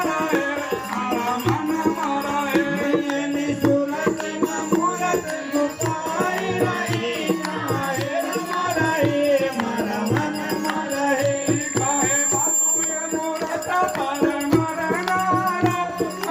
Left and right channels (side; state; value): both; identical; correlation 1.00